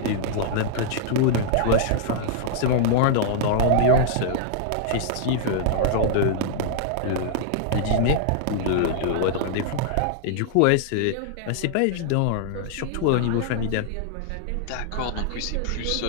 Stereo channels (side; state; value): both; different; correlation -0.01